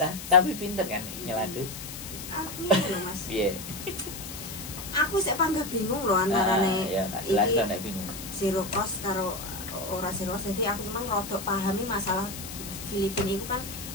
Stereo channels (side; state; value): left; noise; hiss, 10 dB below the sound